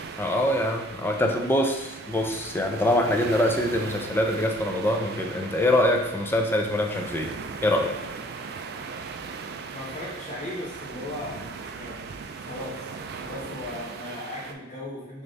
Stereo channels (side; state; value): both; normal; correlation 0.57